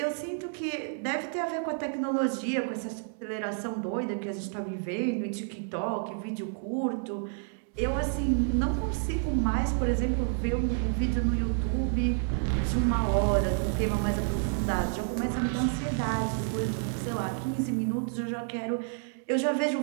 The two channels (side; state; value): left; silent; 58 dB below the other